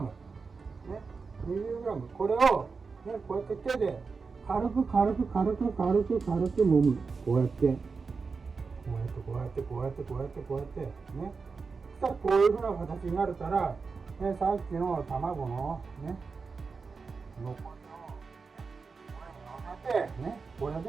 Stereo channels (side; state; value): left; quieter; 4.8 dB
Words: ね、20g、これをね、こうやって手で軽く揉む。こうやってね、そしたらこういうふうな形になるから、ね、さっきの卵のね、残りをこれに乗せて、ね、これ